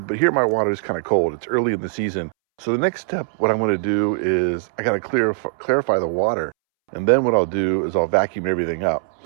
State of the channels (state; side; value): silent; left; 65 dB below the other